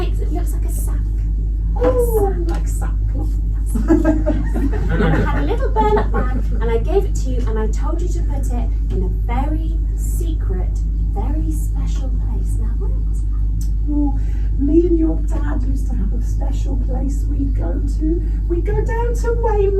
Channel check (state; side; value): identical; both; correlation 1.00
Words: it looks like a sack. Oh, like sackcloth. And I had a little burlap bag and I gave it to you and I told you to put it in a very secret, very special place. Now what was that? Oh, me and your dad used to have a special place we'd go to. We'd go down to